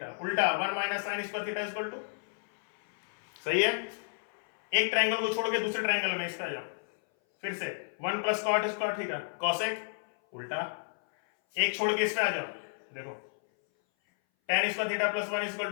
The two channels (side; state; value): right; silent; 57 dB below the other